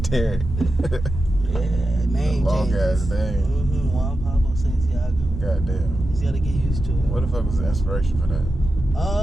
Derek. Yeah, name long changes. ass name. Juan Pablo Santiago. Goddamn. Just gotta get used to it. What the fuck was the inspiration for that?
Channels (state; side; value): normal; both; correlation 0.90